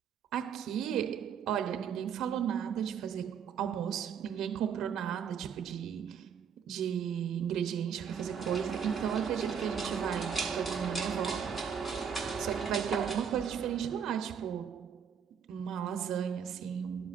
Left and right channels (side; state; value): left; quieter; 7.5 dB